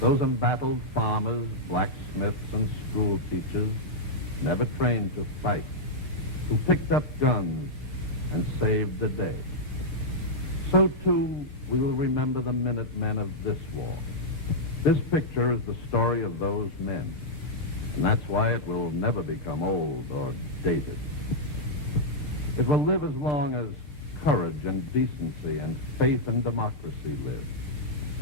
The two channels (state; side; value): normal; both; correlation -0.06